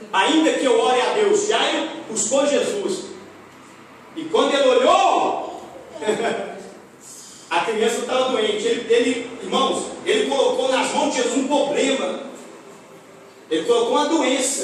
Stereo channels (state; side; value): identical; both; correlation 1.00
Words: Ainda que eu ore a Deus, Jairo buscou Jesus. E quando ele olhou, a criança estava doente. Irmãos, ele colocou nas mãos de Jesus um problema. Ele colocou uma